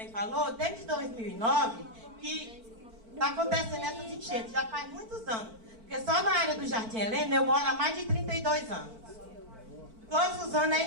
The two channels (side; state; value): left; late; 4.5 ms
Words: falou, desde 2009, que está acontecendo essas enchentes, já faz muitos anos. Porque só na área do Jardim Helena eu moro há mais de 32 anos. Todos os anos